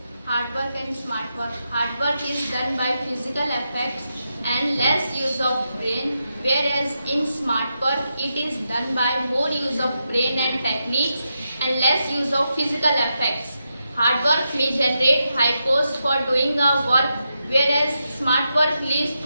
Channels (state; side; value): inverted; both; correlation -0.86